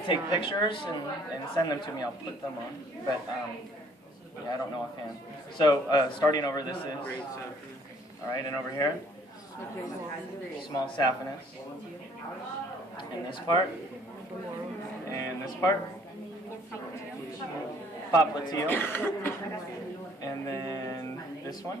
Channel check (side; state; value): both; normal; correlation 0.60